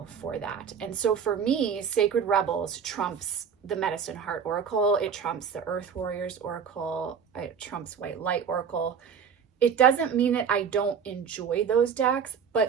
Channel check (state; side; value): quieter; left; 7.0 dB